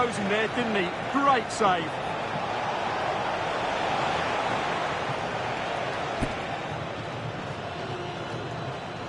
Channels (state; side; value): identical; both; correlation 1.00